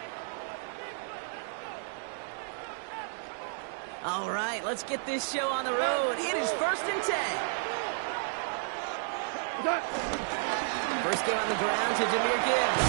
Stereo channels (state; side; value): silent; left; digital silence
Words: All right, let's get this show on the road. It is 1st and 10. First game on the ground to Jahmyr Gibbs.